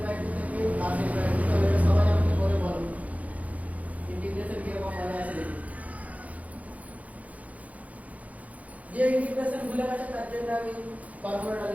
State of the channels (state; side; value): late; left; 0.070 ms